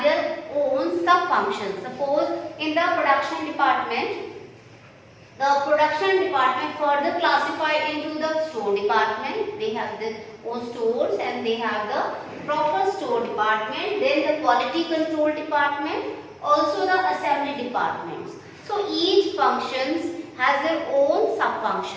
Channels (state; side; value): identical; both; correlation 1.00